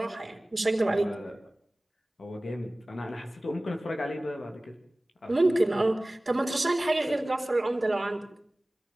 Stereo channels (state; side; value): normal; both; correlation 0.98